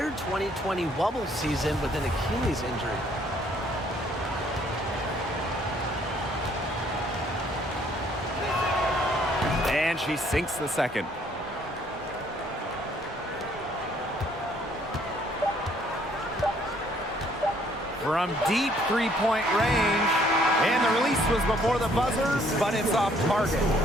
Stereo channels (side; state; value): both; normal; correlation 0.63